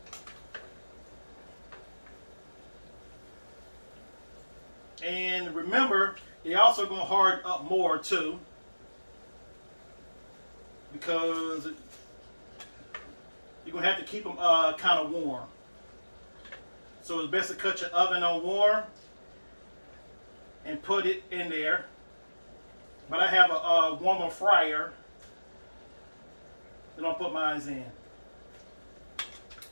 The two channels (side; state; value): both; inverted; correlation -1.00